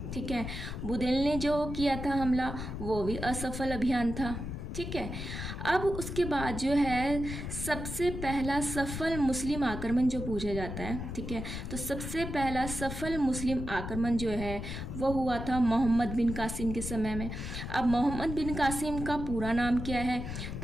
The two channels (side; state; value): left; noise; rumble, 6 dB below the sound